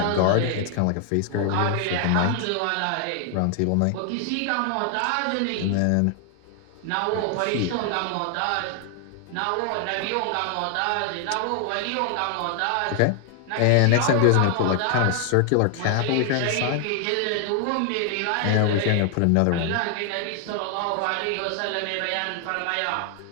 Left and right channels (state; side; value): different; both; correlation 0.00